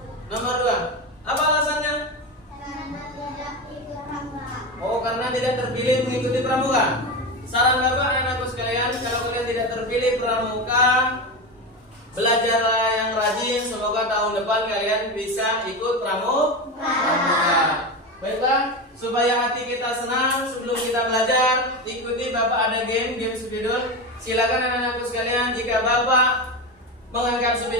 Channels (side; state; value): both; normal; correlation 0.19